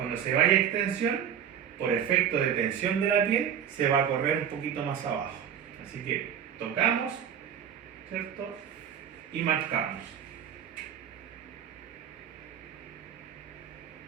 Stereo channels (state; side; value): quieter; left; 8.8 dB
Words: se vaya a extensión, por efecto de tensión de la piel, se va a correr un poquito más abajo. Así que tocamos, ¿cierto? Y marcamos.